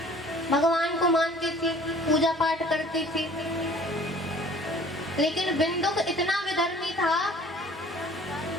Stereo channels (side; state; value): both; normal; correlation 0.51